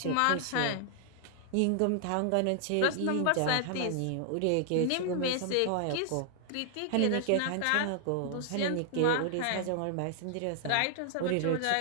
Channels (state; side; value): different; both; correlation 0.00